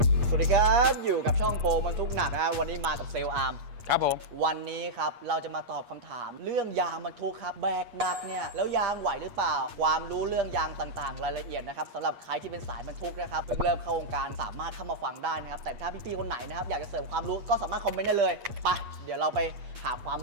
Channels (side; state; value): left; late; 8.4 ms